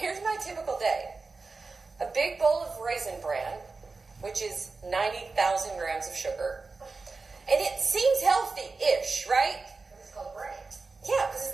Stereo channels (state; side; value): quieter; left; 4.0 dB